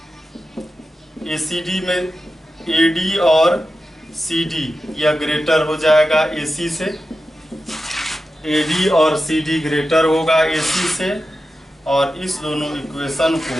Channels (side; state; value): both; normal; correlation 0.92